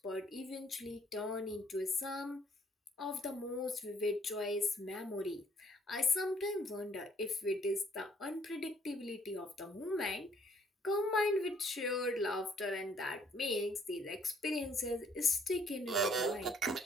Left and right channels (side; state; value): both; normal; correlation 0.64